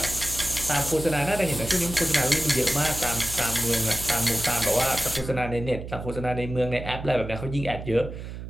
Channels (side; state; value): right; noise; hum, 9 dB below the sound